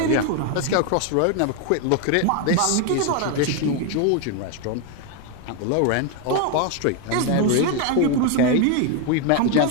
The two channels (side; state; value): both; different; correlation 0.01